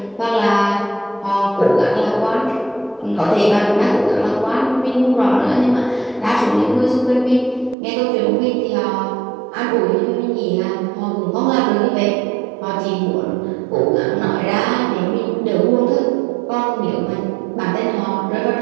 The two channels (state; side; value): drops out; left; at 7.8 s